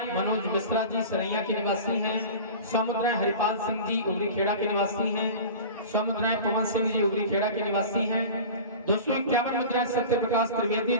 मनोज मिश्रा जी सरैया के निवासी हैं। 100 मुद्राएं हरिपाल सिंह जी उगरी खेड़ा के निवासी हैं। 100 मुद्राएं पवन सिंह जी उगरी खेड़ा के निवासी हैं। 251 मुद्राएं सत्य प्रकाश त्रिवेदी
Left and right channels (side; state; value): both; inverted; correlation -0.36